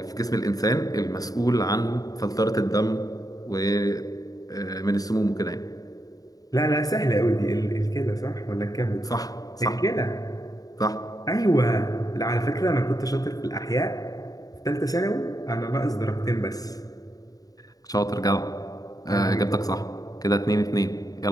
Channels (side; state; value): right; late; 0.18 ms